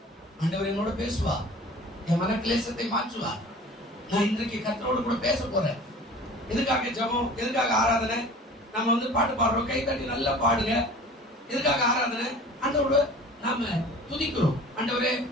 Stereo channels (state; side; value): normal; both; correlation 0.43